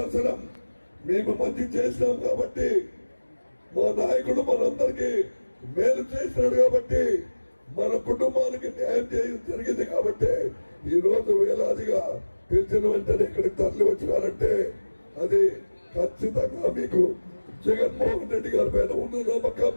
మేము మంచి చేసినాం కాబట్టి, మా నాయకుడు మనందరికీ మేలు చేసినాడు కాబట్టి, మన కుటుంబానికి న్యాయం చేయడం జరిగింది కాబట్టి ఈ రోజు వేలాదిగా పిలిచిన వెంటనే ఇక్కడికి తరలి వచ్చినారంటే అది ఖచ్చితంగా మీకు జగన్మోహన్ రెడ్డి గారి పైన ఉన్న నమ్మకం,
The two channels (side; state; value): both; inverted; correlation -1.00